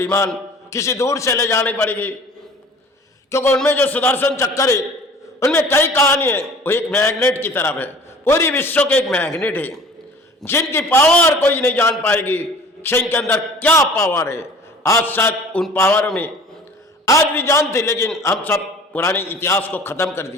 किसी दूर से ले जानी पड़ेगी। क्योंकि उनमें जो सुदर्शन चक्कर है, उनमें कई कहानी है। वो एक मैग्नेट की तरफ है, पूरी विश्व के एक मैग्नेट है, जिनकी पावर कोई नहीं जान पाएगी। इनके अंदर क्या पावर है, आज शायद उन पावर में आज भी जानते, लेकिन हम सब पुराने इतिहास को खत्म कर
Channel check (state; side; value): normal; both; correlation 0.46